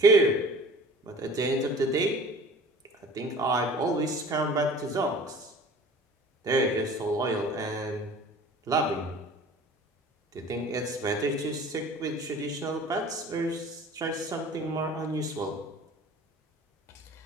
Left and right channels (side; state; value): both; normal; correlation 0.44